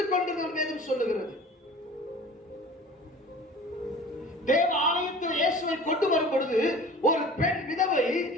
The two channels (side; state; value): both; normal; correlation 0.42